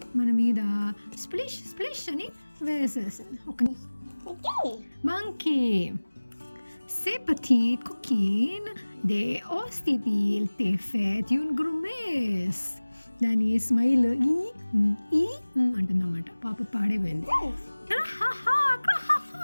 మన మీద స్ప్లిష్ స్ప్లిష్ అని వేసేసింది. ఒక monkey C'est petit coquine de ostitil te fet un grumes. దాని స్మైల్ ఈ అంటుందన్నమాట. పాప పాడైపోయింది.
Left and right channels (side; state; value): both; inverted; correlation -1.00